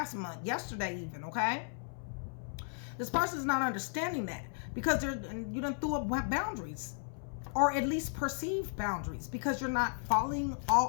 month, yesterday even, okay? This person is not understanding that because you done threw up boundaries, or at least perceived boundaries, because you're not falling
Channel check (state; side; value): silent; right; 54 dB below the other